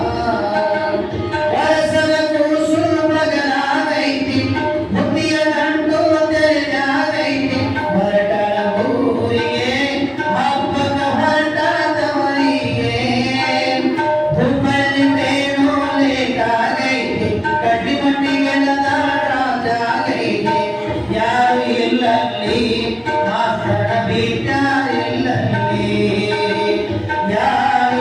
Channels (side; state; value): both; identical; correlation 1.00